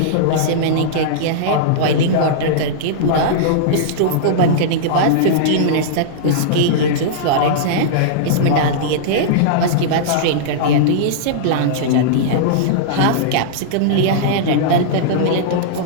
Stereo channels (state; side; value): different; both; correlation -0.02